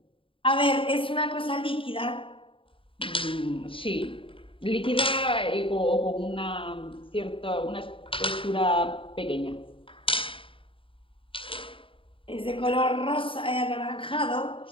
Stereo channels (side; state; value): right; late; 0.25 ms